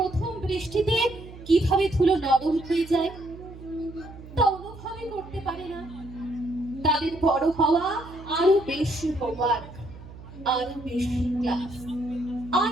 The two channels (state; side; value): noise; right; hum, 16 dB below the sound